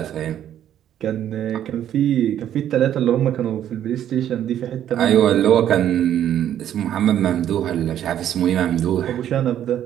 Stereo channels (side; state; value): left; quieter; 10.8 dB